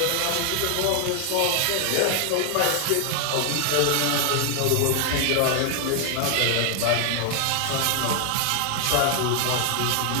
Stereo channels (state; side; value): different; both; correlation 0.00